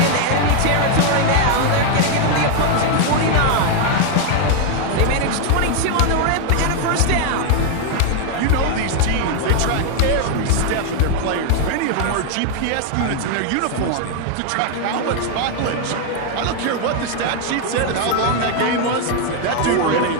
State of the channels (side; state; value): both; different; correlation 0.00